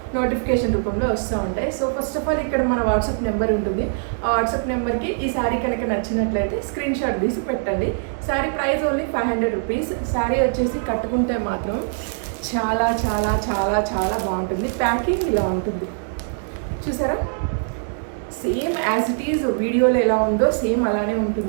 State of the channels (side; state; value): left; silent; digital silence